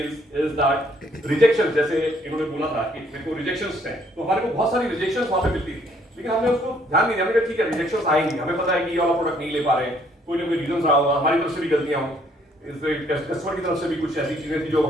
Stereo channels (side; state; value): both; normal; correlation 0.65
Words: is that rejection, जैसे इन्होंने बोला था कि मेरे को rejections हैं, तो हमारे को बहुत सारी rejections वहाँ पे मिलती थी, लेकिन हमने उसको ध्यान नहीं दिया। हमने कहा ठीक है rejections आएंगी, हमें पता है कि ये वाला प्रोडक्ट नहीं ले पा रहे हैं, कोई ना कोई रीजन रहा होगा, हमारी तरफ से भी गलतियां हों, कस्टमर की तरफ से भी कुछ ऐसी चीजें थी जो